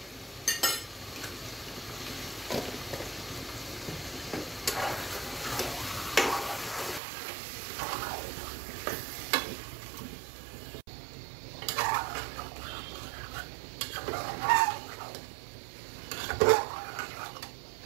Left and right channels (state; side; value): drops out; left; at 7.0 s